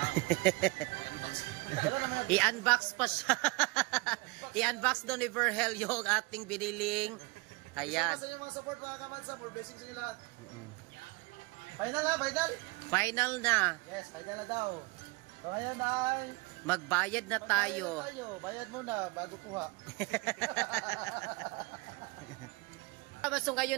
I-unbox pa siya. I-unbox doon ni Verhel yung ating biniling. Ayan. Sa yung mga support mga kamansa, more blessings sa inyo lahat. Final na, final. Final na. Yes, final na daw. So ngayon ay magbayad na tayo. Bayad muna bago kuha. So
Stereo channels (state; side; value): quieter; left; 26.0 dB